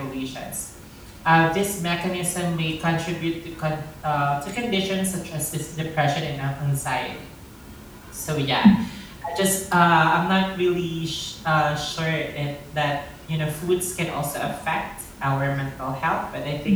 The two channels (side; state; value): both; identical; correlation 1.00